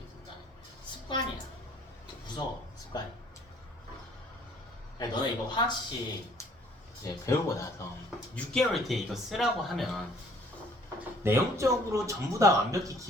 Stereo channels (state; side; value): normal; both; correlation 0.58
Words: 간에 습관이야. 무서워 습관이. 너네 이거 화학식 이제 배우고 나서 6개월 뒤에 이거 쓰라고 하면 내용적으로 전부 다 완벽히